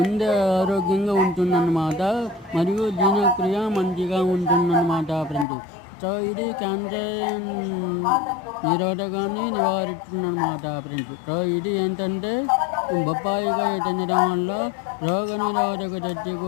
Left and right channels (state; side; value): drops out; right; at 5.5 s